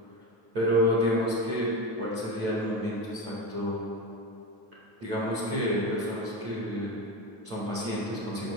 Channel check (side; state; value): left; late; 9.3 ms